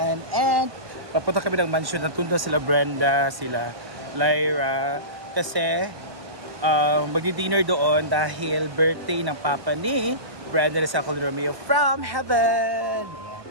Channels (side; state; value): left; late; 1.2 ms